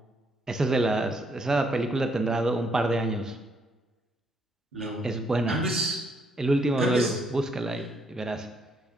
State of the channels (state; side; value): normal; both; correlation 0.72